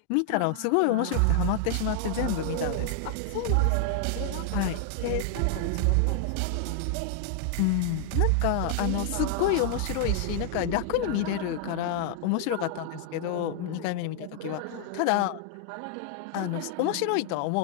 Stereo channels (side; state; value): both; different; correlation 0.00